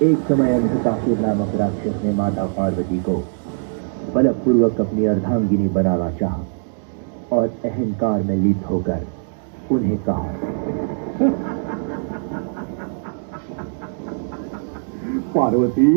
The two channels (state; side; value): silent; left; digital silence